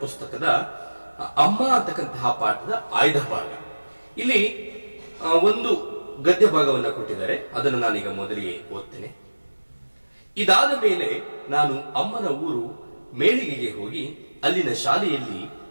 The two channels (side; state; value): both; inverted; correlation -1.00